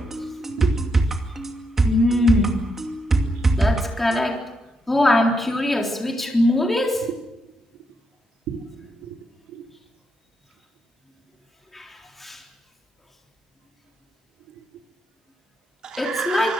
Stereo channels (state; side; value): normal; both; correlation 0.81